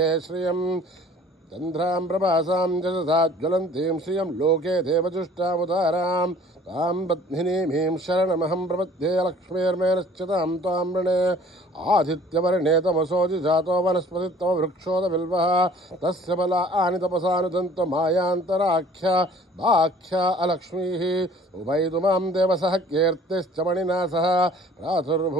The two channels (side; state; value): both; normal; correlation 0.52